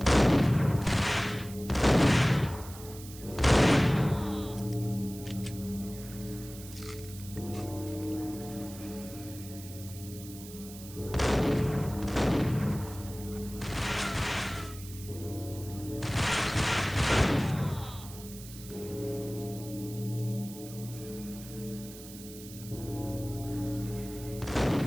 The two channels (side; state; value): right; noise; hiss, 16 dB below the sound